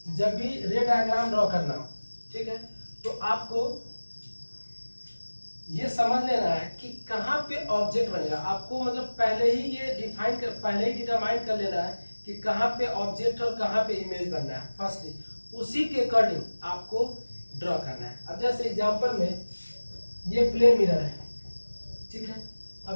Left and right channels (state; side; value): inverted; both; correlation -1.00